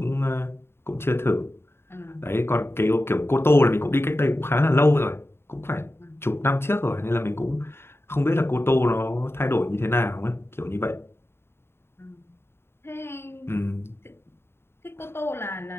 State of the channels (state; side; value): late; right; 0.11 ms